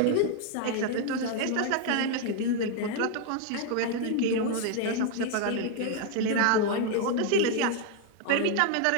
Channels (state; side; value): different; both; correlation 0.00